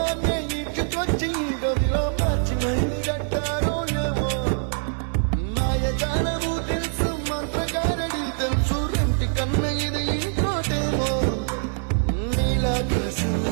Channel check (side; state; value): left; silent; 63 dB below the other